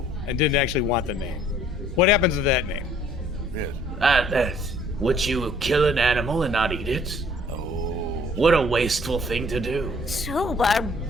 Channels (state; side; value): normal; both; correlation 0.58